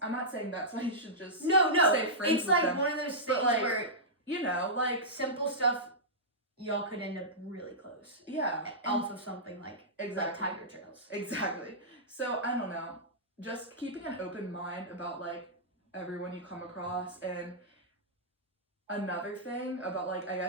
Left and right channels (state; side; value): normal; both; correlation -0.13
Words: I'm not saying that's why you should just stay friends it's with like them. One of those things like, where, you know, like simple stuff, y'all could end up really close. Yeah. Off of something like exactly. Tiger Trails. Exactly. So I don't know. Just keeping an open mind about like everyone you come across. And another thing about like, I